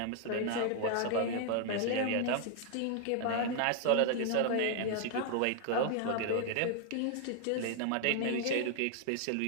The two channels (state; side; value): different; both; correlation 0.00